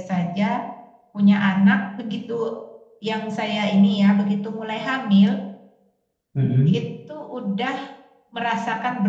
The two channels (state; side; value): identical; both; correlation 1.00